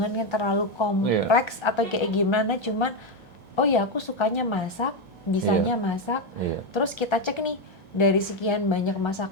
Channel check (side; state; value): both; normal; correlation 0.07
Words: yang terlalu Iya, kompleks atau kayak gimana. Cuman, oh ya aku sukanya masak, iya, bisanya masak. iya. Terus kita cek nih, dari sekian banyak